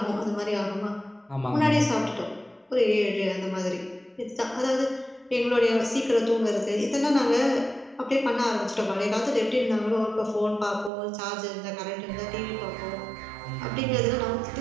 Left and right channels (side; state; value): left; drops out; at 10.9 s